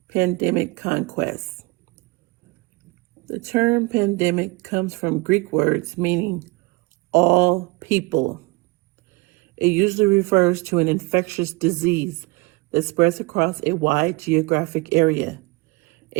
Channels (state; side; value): quieter; left; 25.0 dB